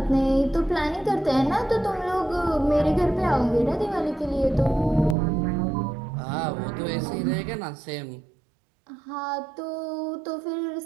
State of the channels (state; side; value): drops out; left; at 5.2 s